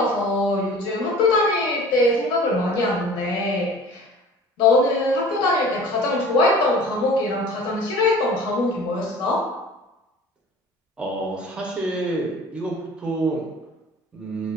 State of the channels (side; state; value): both; normal; correlation 0.43